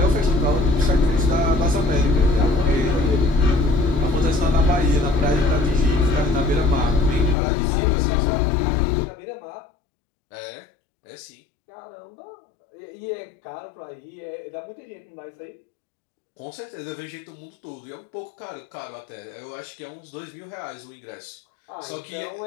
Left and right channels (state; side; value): drops out; right; at 7.4 s